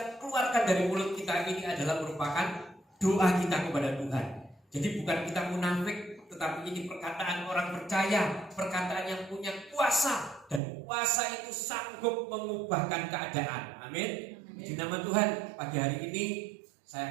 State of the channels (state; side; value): drops out; left; at 10.6 s